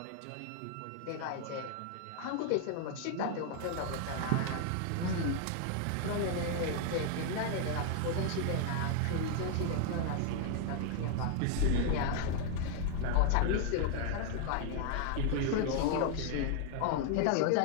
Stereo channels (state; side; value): different; both; correlation 0.00